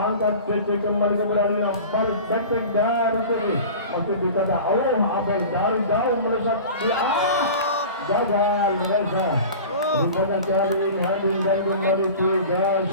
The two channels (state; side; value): inverted; both; correlation -0.37